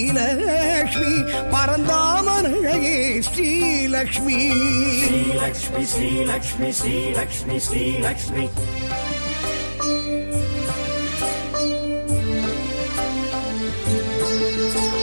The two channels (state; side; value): inverted; both; correlation -1.00